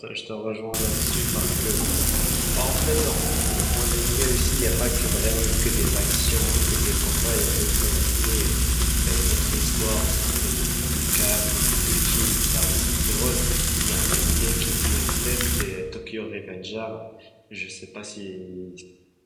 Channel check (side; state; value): both; identical; correlation 1.00